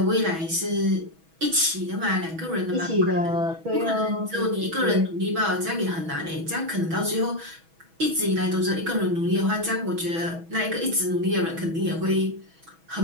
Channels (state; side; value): late; left; 6.2 ms